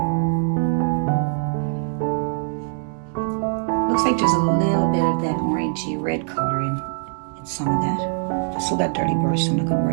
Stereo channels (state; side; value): silent; left; 64 dB below the other